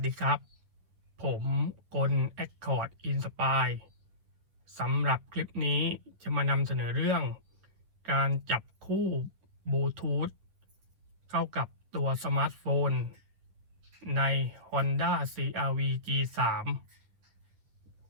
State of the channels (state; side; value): late; left; 10 ms